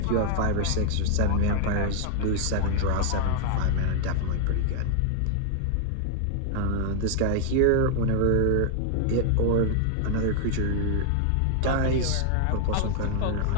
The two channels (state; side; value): different; both; correlation 0.00